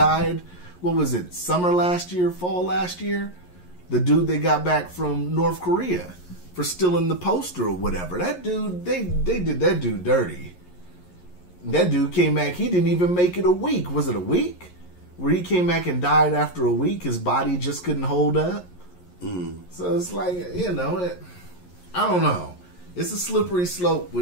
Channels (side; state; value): right; late; 11 ms